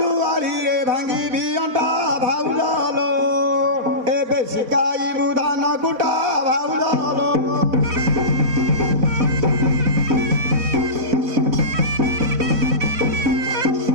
रे भांगी भी अंटा भाउलो एबे शिकाई Budhan गुटा भाउलो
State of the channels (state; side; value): late; left; 4.1 ms